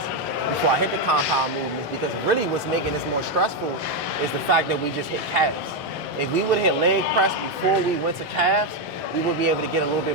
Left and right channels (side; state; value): both; normal; correlation 0.05